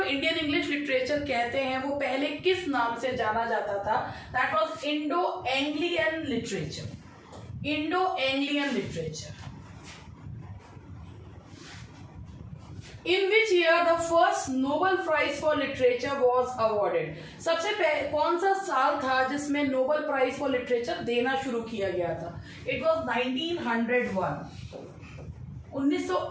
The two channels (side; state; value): both; identical; correlation 1.00